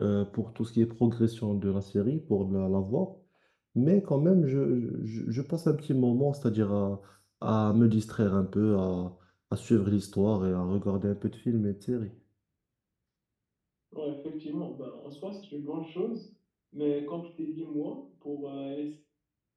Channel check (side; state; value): both; identical; correlation 1.00